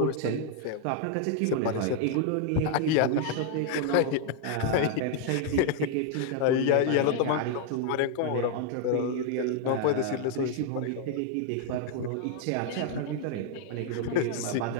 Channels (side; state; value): both; different; correlation 0.00